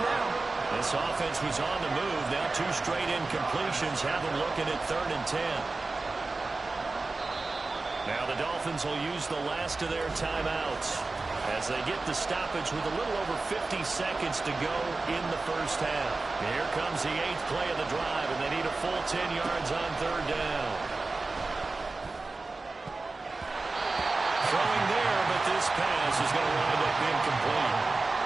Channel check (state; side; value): quieter; left; 3.5 dB